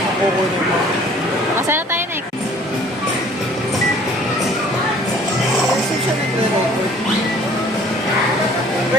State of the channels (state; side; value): normal; both; correlation 0.53